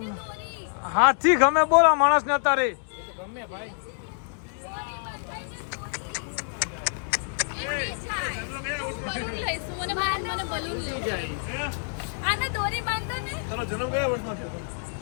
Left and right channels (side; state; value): right; silent; digital silence